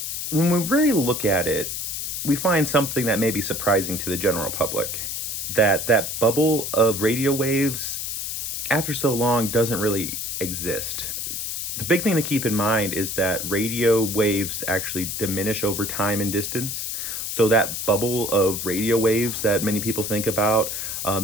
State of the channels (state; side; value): noise; left; hiss, 4 dB below the sound